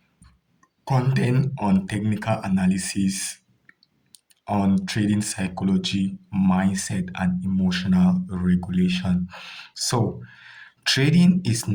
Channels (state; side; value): identical; both; correlation 1.00